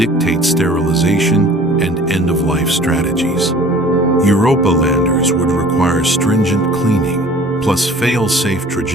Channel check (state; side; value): normal; both; correlation 0.48